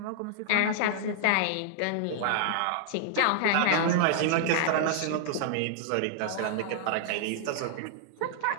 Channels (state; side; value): different; both; correlation -0.01